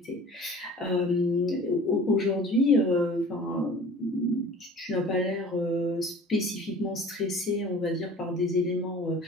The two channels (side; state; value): both; normal; correlation 0.44